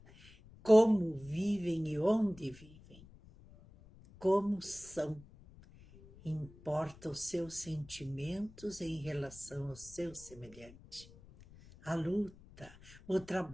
como vivem e onde vivem, como são. Importa os seus sentimentos em relação ao seu semelhante. A luta, o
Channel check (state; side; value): noise; left; rumble, 22 dB below the sound